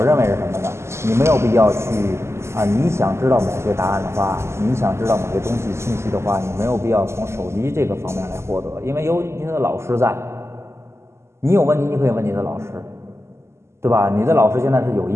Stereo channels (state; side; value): late; left; 0.13 ms